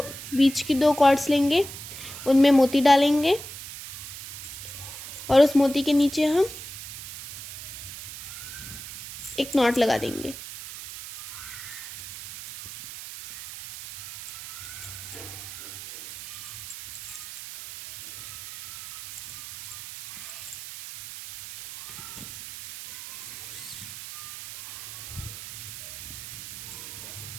की दो कॉर्ड्स लेंगे, उनमें मोती डालेंगे और उस मोती के नीचे हम एक नॉट लगा देंगे।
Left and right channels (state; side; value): noise; right; hiss, 11 dB below the sound